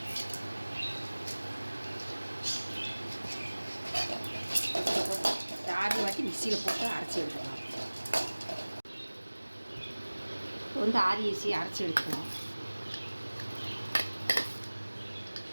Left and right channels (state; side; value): inverted; both; correlation -1.00